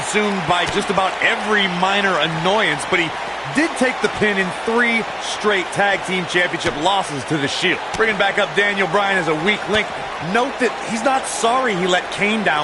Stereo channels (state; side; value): identical; both; correlation 1.00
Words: by just about every minor annoyance, but he did take the pin in 3 straight tag team championship losses to the Shield. Bringing back up Daniel Bryan as a weak link, note that he's not sorry he let Kane down